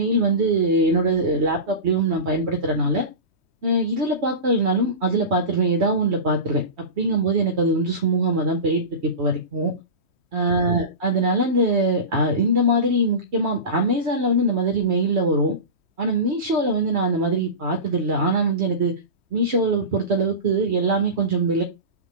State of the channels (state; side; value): late; left; 3.1 ms